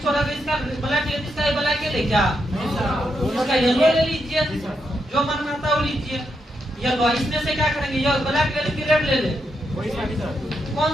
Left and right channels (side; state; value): both; normal; correlation 0.82